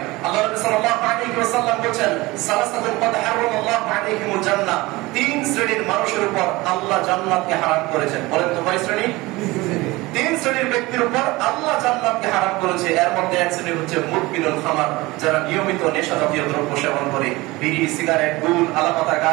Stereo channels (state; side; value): quieter; left; 21.1 dB